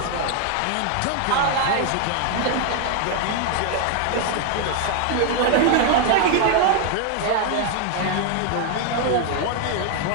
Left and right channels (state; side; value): different; both; correlation 0.00